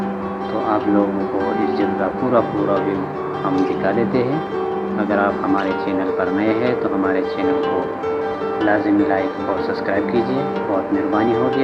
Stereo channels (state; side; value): identical; both; correlation 1.00